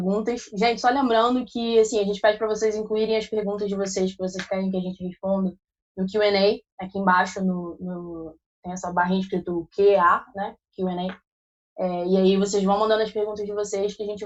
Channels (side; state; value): both; identical; correlation 1.00